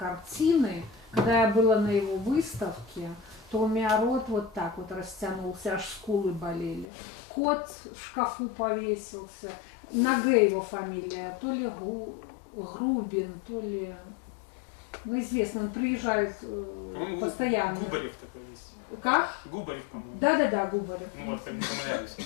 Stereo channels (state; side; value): drops out; right; at 6.9 s